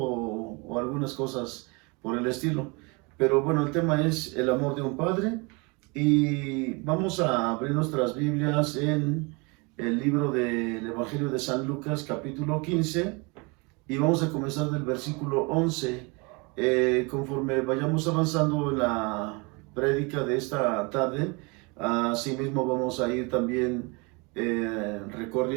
algunas cosas por el estilo. Pero bueno, el tema es el amor de un padre y vamos a abrir nuestras Biblias en el libro del Evangelio de San Lucas, capítulo 15, y vamos a comenzar del versículo 11. Conforme vayamos avanzando en la prédica de esta tarde, asimismo vamos a ir también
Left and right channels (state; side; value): quieter; left; 29.3 dB